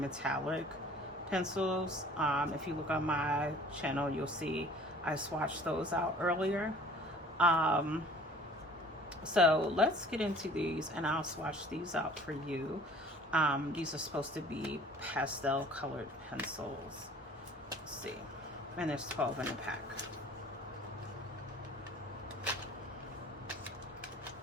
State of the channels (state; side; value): normal; both; correlation 0.49